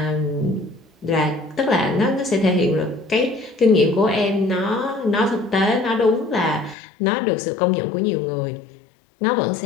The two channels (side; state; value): right; drops out; at 6.8 s